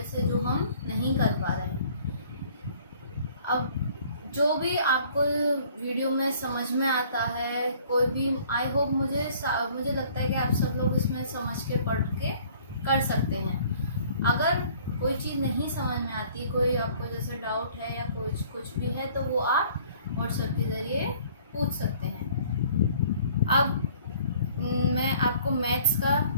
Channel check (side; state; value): both; inverted; correlation -0.55